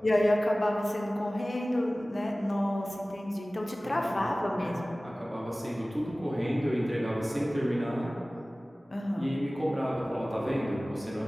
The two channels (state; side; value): normal; both; correlation 0.98